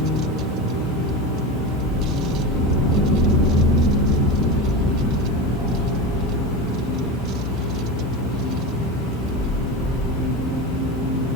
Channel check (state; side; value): normal; both; correlation 0.23